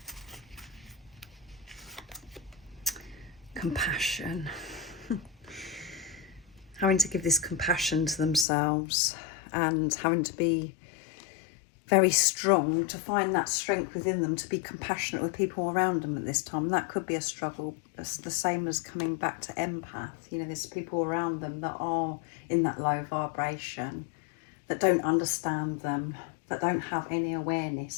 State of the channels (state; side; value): drops out; right; at 8.5 s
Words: Compassion. Having to give this compassion to themselves and having to be very strong to find that strength within them to be compassionate with people around them at this time. That could be a struggle. It's the same as coming back to empath. You know, there's people around them that are in that low vibration, that don't understand them, that don't have any